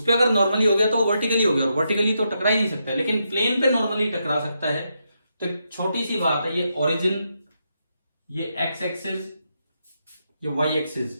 और वर्टिकली तो टकरा ही नहीं सकता है, लेकिन प्लेन पे नॉर्मली टकरा सकता है। तो एक छोटी सी बात है, ये ओरिजिन, ये एक्स एक्सिस, ये वाई एक्सिस,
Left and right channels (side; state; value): both; inverted; correlation -0.82